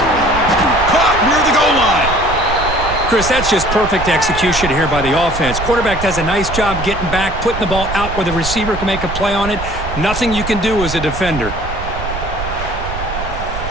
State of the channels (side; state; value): right; noise; rumble, 8 dB below the sound